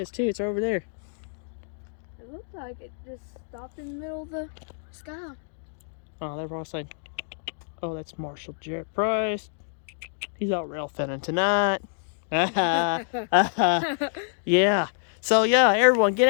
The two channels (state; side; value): silent; right; digital silence